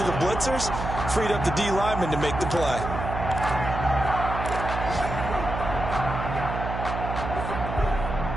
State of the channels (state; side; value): noise; right; hum, 5 dB below the sound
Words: the blitzers, freed up the D lineman to make the play.